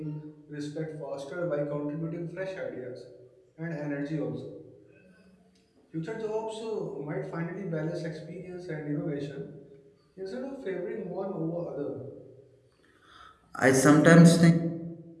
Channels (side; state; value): both; identical; correlation 1.00